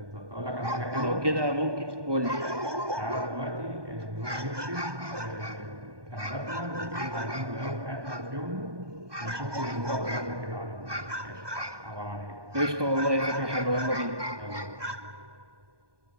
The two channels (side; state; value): left; late; 1.2 ms